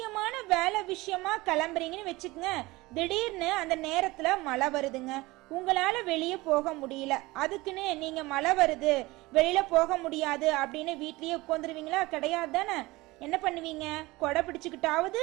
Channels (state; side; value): quieter; left; 21.0 dB